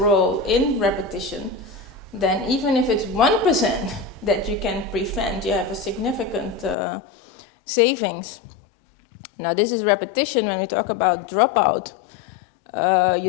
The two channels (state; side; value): drops out; right; at 6.8 s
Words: in repetition, then even if it's 1% that you can prevent, you have a significant savings. Now, this is repetition. When we talk about dropout,